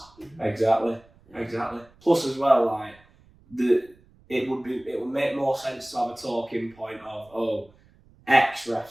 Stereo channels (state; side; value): noise; right; rumble, 29 dB below the sound